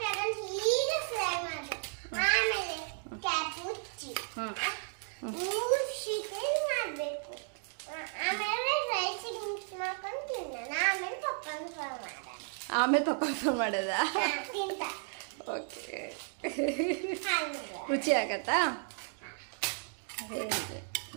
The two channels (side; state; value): left; silent; 55 dB below the other